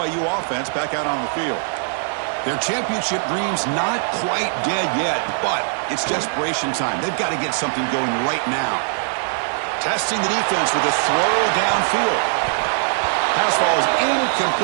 offense back out on the field. Their championship dreams not quite dead yet, but it's desperation time. They've got to get something going right now. Testing the defense with a throw downfield. Pass ball is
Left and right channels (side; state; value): left; silent; digital silence